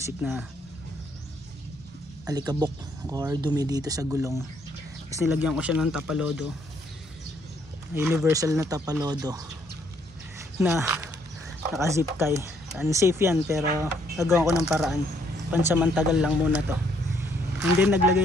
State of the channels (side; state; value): both; normal; correlation 0.69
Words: na alikabok or dumi dito sa gulong. Tapos nilagyan ko siya ng tapalodo, universal na tapalodo na naka zip tie. Unsafe yan pero nagawa ko ng paraan, pansamantagal lang muna to. And then